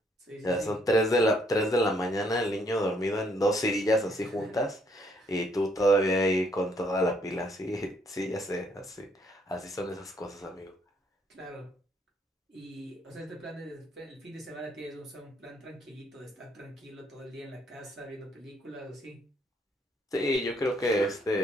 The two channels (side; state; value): both; normal; correlation 0.68